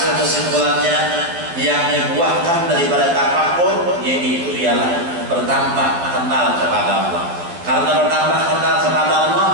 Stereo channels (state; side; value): late; left; 12 ms